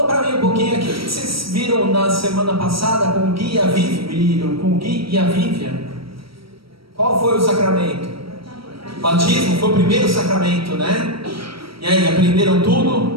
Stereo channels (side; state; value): left; late; 0.75 ms